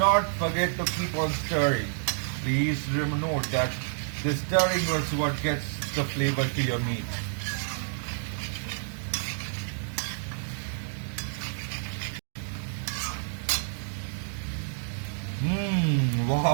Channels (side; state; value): left; silent; digital silence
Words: forget to keep on stirring. Please note that the stirring is what gets the flavor to your meat.